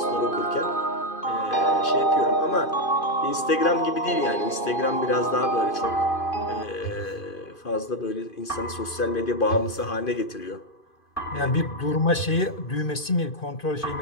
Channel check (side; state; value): right; late; 2.5 ms